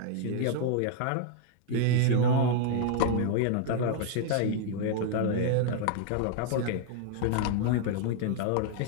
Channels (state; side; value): different; both; correlation 0.00